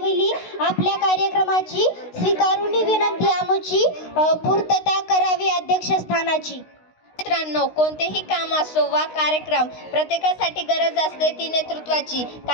आपल्या कार्यक्रमाची, स्वीकारून विनंती आमची पूर्तता करावी अध्यक्षस्थानाची. मित्रांनो, कोणतेही काम असो वा कार्यक्रम, प्रत्येकासाठी गरज असते ती नेतृत्वाची.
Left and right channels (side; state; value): right; late; 16 ms